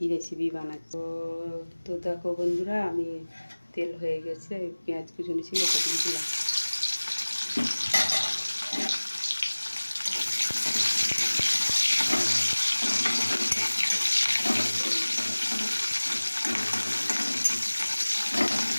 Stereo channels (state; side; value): inverted; both; correlation -1.00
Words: রেসিপি বানাচ্ছ। তো দেখো বন্ধুরা, আমি তেল হয়ে গেছে, পেঁয়াজ কুচুনি ছিল ওটা দিয়ে দিলাম।